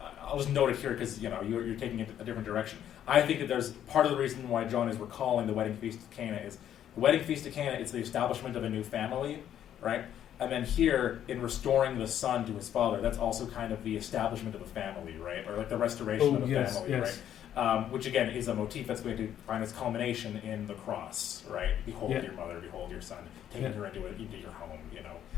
note it here because you're taking it a different direction. I think that there's part of the reason why John is recalling the wedding feast of Cana is the wedding feast of Cana. It's the establishment of a new family, right? And then here, in restoring the son to his father, that's also kind of the establishment of a family, right? Or like the restoration of a family, right? which again is a motif that's going to find its culmination in the cross, right? Behold your mother, behold your son, taking her into your home,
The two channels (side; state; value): right; quieter; 10.5 dB